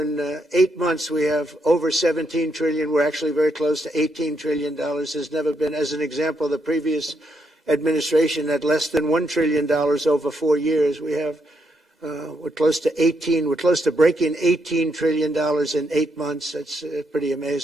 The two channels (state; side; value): normal; both; correlation 0.78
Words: 8 months, we have over 17 trillion. We're actually very close to $18 trillion. There's never been, as an example, the previous administration had less than $1 trillion over 4 years. We're close to breaking $18 trillion in 8 months. That's pretty